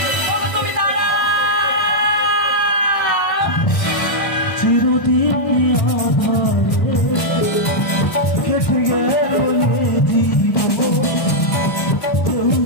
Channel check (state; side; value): late; right; 1.5 ms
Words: চিরদিন কেটে গেল জীবন,